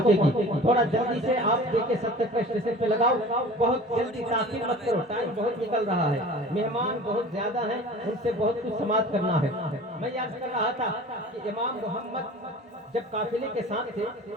थोड़ा जल्दी से आप देखे 70 के स्टेशन पे लगाओ। बहुत जल्दी, ताखीर मत करो, टाइम बहुत निकल रहा है, मेहमान बहुत ज्यादा हैं, उनसे बहुत कुछ समाप्त करना है। मैं याद कर रहा था कि इमाम मोहम्मद जब काफिले के साथ थे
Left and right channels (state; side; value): normal; both; correlation 0.41